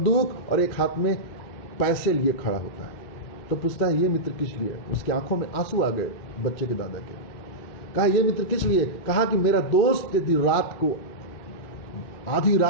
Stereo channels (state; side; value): late; right; 2.4 ms